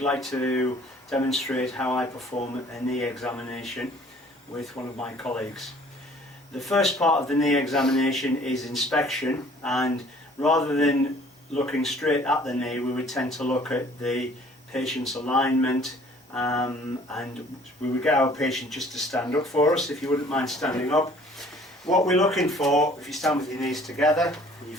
to demonstrate how I perform a knee examination with one of my colleagues. The first part of the knee examination is inspection, and rather than looking straight at the knee, we would tend to look at the patient's alignment, and we would get our patient just to stand up for us, if you wouldn't mind standing up. What we're looking for, if you stand with your knees together and your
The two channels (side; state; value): both; normal; correlation 0.54